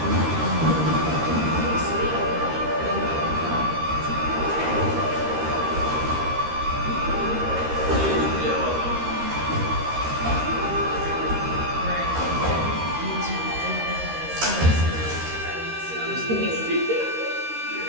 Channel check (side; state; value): left; late; 13 ms